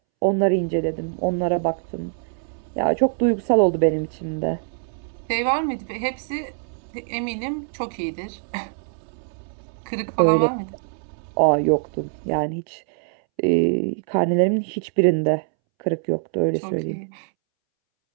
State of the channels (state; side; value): silent; left; 63 dB below the other